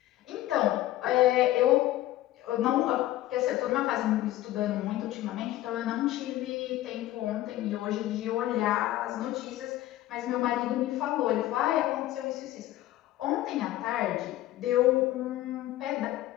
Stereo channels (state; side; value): quieter; right; 15.0 dB